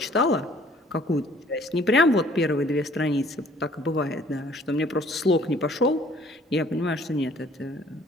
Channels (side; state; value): both; normal; correlation 0.57